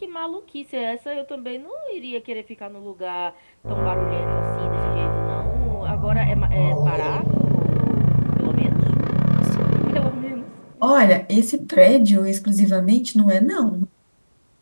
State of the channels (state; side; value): inverted; both; correlation -1.00